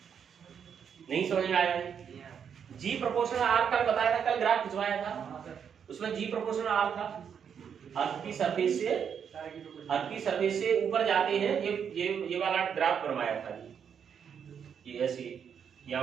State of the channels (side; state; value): left; quieter; 7.6 dB